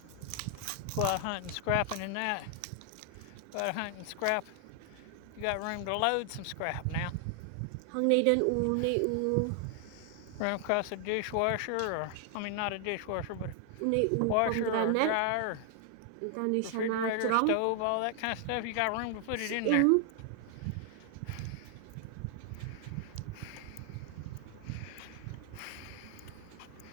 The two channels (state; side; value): different; both; correlation 0.00